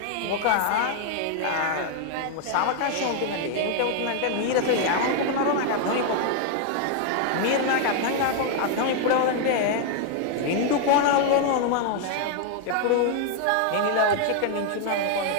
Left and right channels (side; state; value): both; different; correlation 0.00